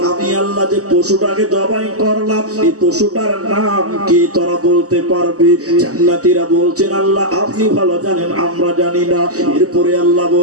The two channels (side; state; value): left; late; 0.66 ms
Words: আমি আল্লাহ যে পশুটাকে জবাই করলাম, এই পশুটার নাম কি তোরা বলতে পারবি? জান্নাতীরা বলছেন, আল্লাহ আপনি ভালো জানেন, আমরা জানি না। এরপরে আল্লাহ